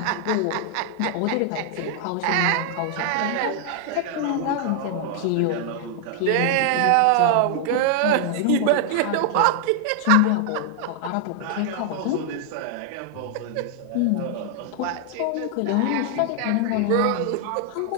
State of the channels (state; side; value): different; both; correlation 0.00